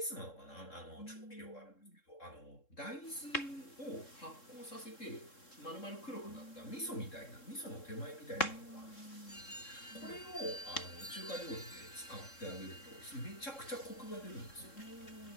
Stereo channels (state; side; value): late; right; 3.7 ms